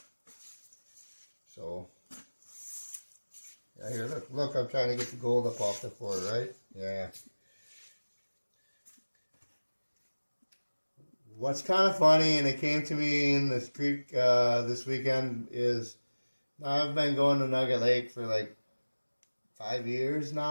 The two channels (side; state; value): both; inverted; correlation -1.00